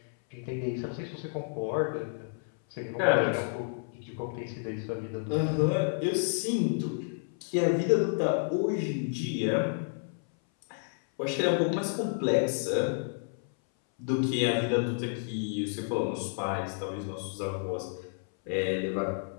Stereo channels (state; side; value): silent; right; 57 dB below the other